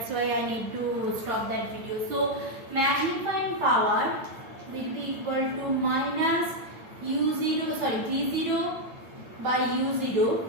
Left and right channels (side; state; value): left; late; 8.8 ms